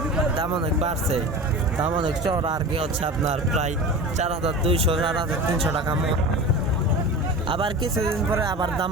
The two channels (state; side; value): normal; both; correlation 0.32